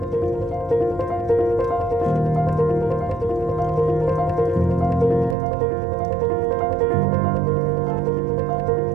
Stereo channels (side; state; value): left; drops out; at 5.4 s